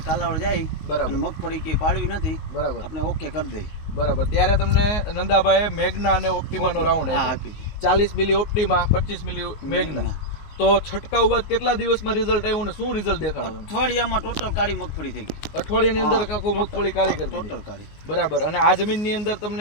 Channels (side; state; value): right; late; 19 ms